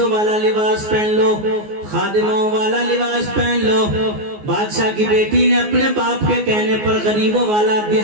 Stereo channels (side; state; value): left; late; 14 ms